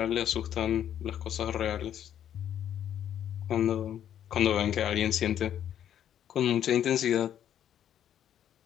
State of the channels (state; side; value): quieter; right; 10.2 dB